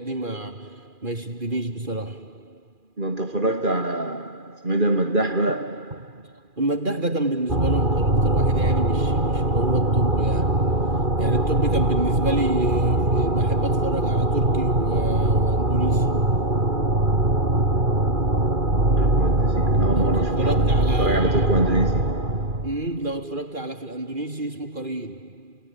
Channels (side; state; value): left; late; 2.4 ms